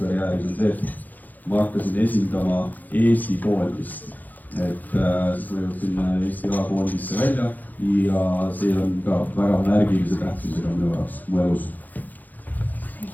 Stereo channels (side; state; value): right; late; 0.083 ms